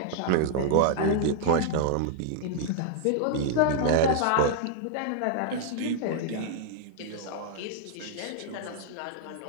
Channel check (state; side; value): different; both; correlation -0.01